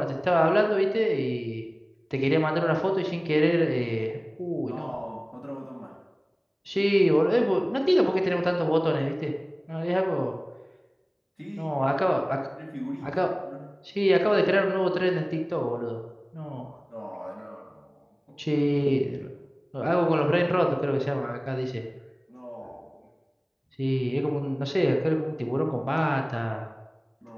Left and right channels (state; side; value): identical; both; correlation 1.00